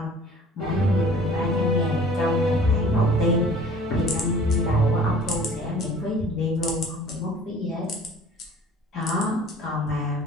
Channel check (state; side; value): normal; both; correlation 0.49